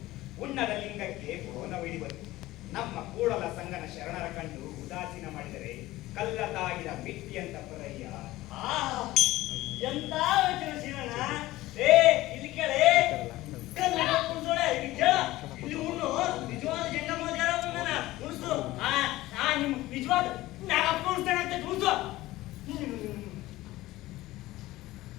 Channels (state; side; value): quieter; right; 17.4 dB